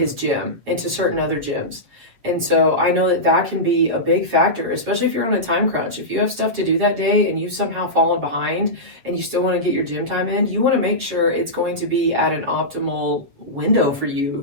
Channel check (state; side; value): late; left; 7.9 ms